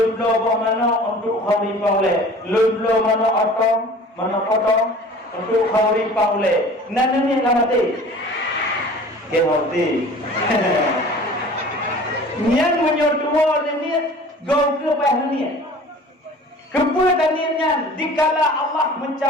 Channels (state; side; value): normal; both; correlation 0.44